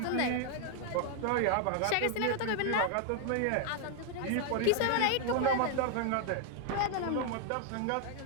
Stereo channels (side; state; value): both; different; correlation 0.00